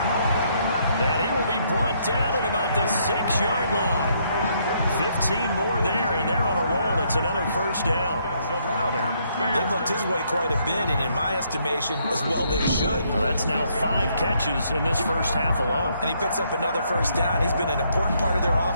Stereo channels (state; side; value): inverted; both; correlation -0.71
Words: And he will be brought down at about the 6-yard line. 15 more there, and they're on a roll. It's another first down. They've looked his way quite a bit, and in my estimation, as well they should. Well, that's now 5 catches in this first half alone. And he picks up another first down. He's been an important part of their